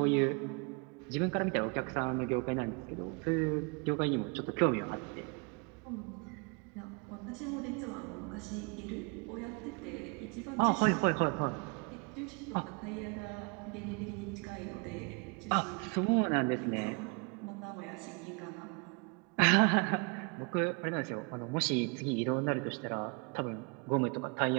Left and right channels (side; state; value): left; quieter; 32.9 dB